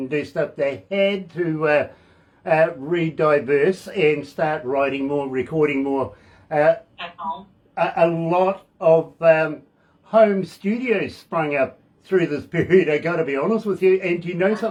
do stuff. They had to re-diverse and start writing more, recording more. At home. A lot of home studios sprung up through this period, I got to be honest with you. And you know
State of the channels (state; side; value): identical; both; correlation 1.00